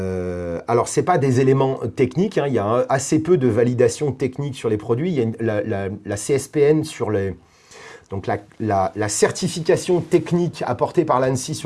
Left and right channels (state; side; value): identical; both; correlation 1.00